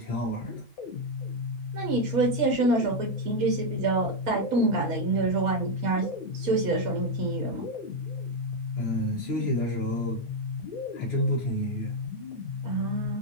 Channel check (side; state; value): both; normal; correlation 0.03